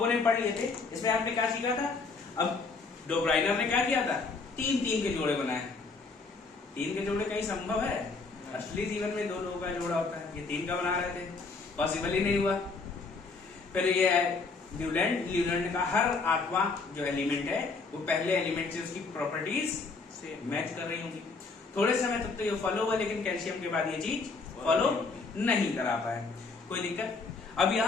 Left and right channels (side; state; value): right; quieter; 4.2 dB